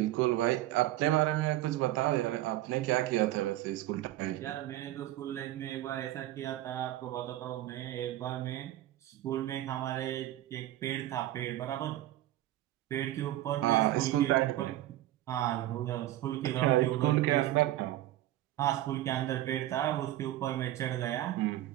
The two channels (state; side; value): quieter; left; 14.7 dB